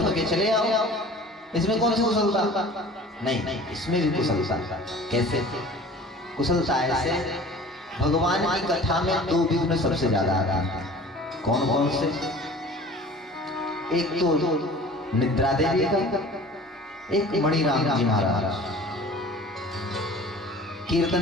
के चले आओ, इसमें कौन सी कुशलता? नहीं, इसमें भी कुशलता। कैसे कुशलता? ऐसे भगवान की कथा में 2 विघ्न सबसे ज्यादा आते हैं। कौन कौन से? एक तो निद्रा देवी का, एक मणिराम जी महाराज।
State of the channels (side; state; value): both; normal; correlation 0.44